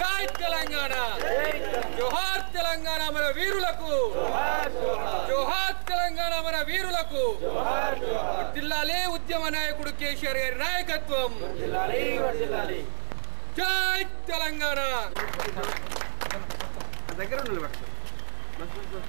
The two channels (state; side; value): silent; left; digital silence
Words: తెలంగాణ జోహార్ తెలంగాణ మన వీరులకు జోహార్ తెలంగాణ మన వీరులకు జిల్లాలే ఉద్యమ నాయకుడు కేసీఆర్ గారి నాయకత్వం జై తెలంగాణ దగ్గర